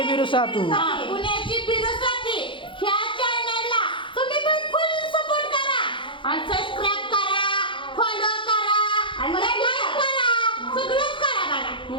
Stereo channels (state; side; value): late; right; 0.24 ms